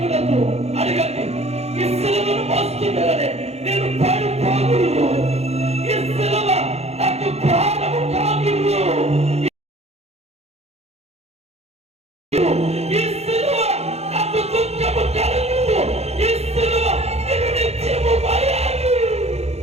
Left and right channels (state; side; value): late; left; 0.31 ms